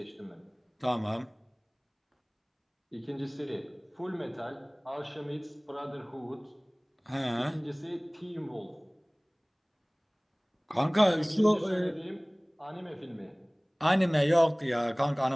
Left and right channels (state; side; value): identical; both; correlation 1.00